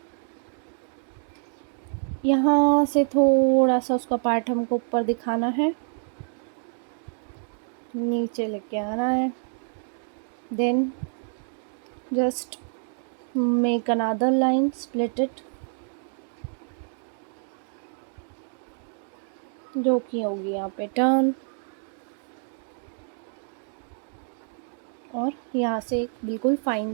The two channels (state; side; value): silent; left; 60 dB below the other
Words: यहाँ से थोड़ा सा उसका पार्ट हमको ऊपर दिखाना है, नीचे लेके आना है। Then just make another line, split it, जो कि होगी यहाँ पे टर्न। और यहाँ से एक बिल्कुल फाइन